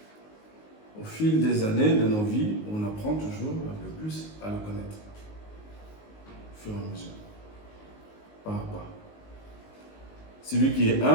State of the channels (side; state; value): right; late; 19 ms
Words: Au fil des années de nos vies, on apprend toujours un peu plus à le connaître. Au fur et à mesure. Pas à pas. Celui qui est